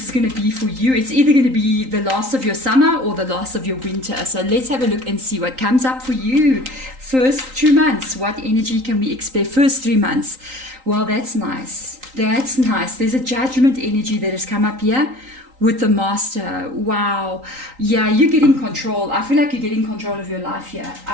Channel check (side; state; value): left; late; 3.8 ms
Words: is going to be for you, it's either going to be the last of your summer or the last of your winter. So let's have a look and see what comes up for you. First 2 months, what energy can we expect? First 3 months. Well, that's nice. That's nice. There's a judgment energy that has come up here with the master. Wow. Yeah, you're getting control. I feel like you're getting control of your life here.